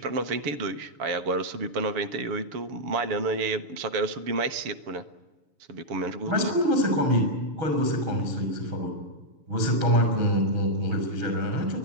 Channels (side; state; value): left; late; 6.8 ms